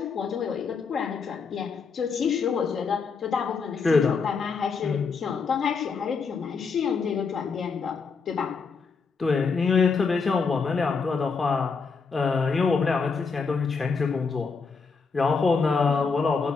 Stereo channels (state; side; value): quieter; right; 5.1 dB